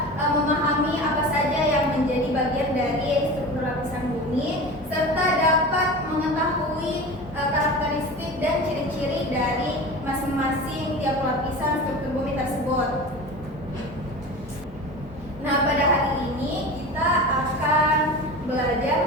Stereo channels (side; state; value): both; normal; correlation 0.32